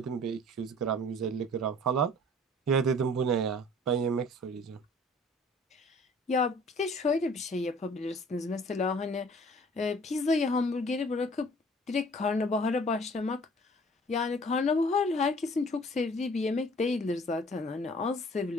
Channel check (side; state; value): both; normal; correlation 0.52